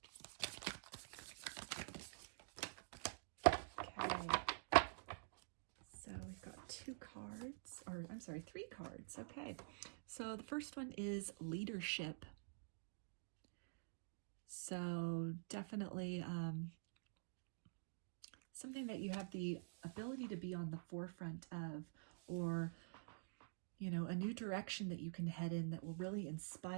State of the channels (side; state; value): left; silent; digital silence